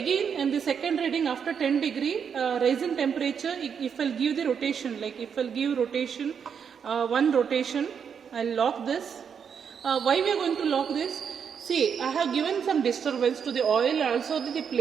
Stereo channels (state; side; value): quieter; left; 7.1 dB